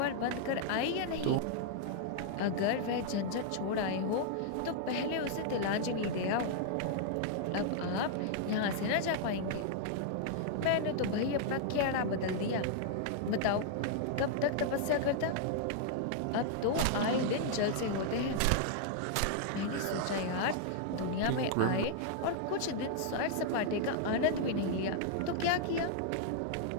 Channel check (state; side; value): different; both; correlation -0.01